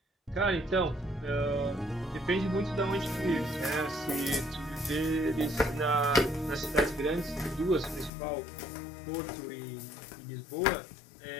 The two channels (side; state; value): right; drops out; at 8.1 s